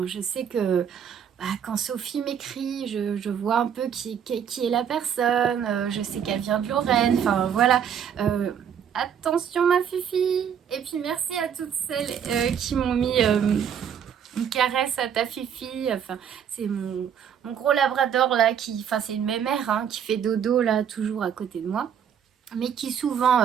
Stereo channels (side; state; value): left; quieter; 8.3 dB